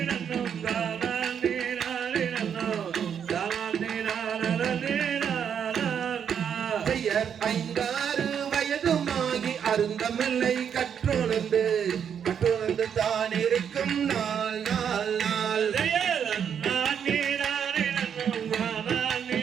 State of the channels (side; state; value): left; quieter; 8.0 dB